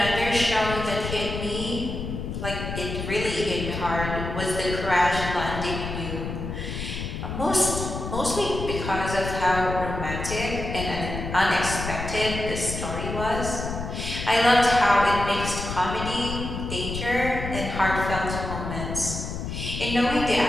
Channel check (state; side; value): noise; left; rumble, 6 dB below the sound